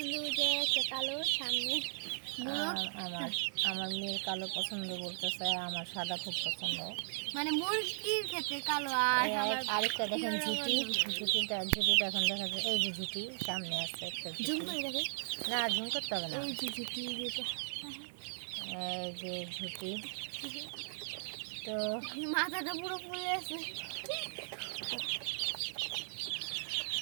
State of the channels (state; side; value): silent; left; digital silence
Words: যে একটা কালো সামনে আমার আমার মেয়ের কালো পছন্দ বলতেছে, আমার সাদা খুব পছন্দ। মানে মুরগির ক্ষেত্রে কালো। আর আরেকটা দেখেন ঝুটি, ঝুটিটা এখন দেখা যায়। এই যে ঝুটি সামনে আছে একটা জুম করে দেখে না, ঝুম করতে হবে না। এই যে ঝুটি, যেটা এই যে ঝুটি, তো মাথাটা পুরো ফুলে আছে।